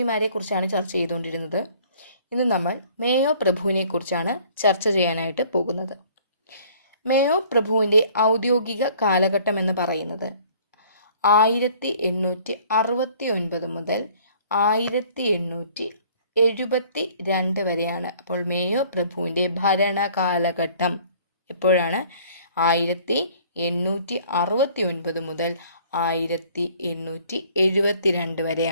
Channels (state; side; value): inverted; both; correlation -0.55